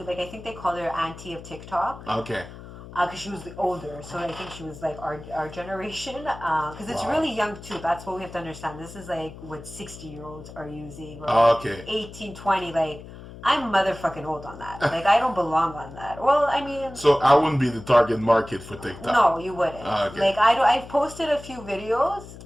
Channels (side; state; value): left; noise; hum, 15 dB below the sound